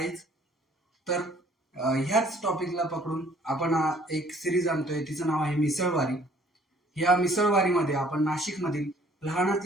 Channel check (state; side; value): normal; both; correlation 0.58